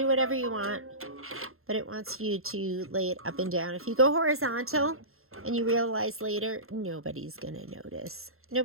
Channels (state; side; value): late; left; 0.62 ms